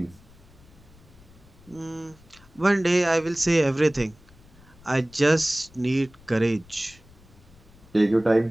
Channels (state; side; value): noise; left; rumble, 25 dB below the sound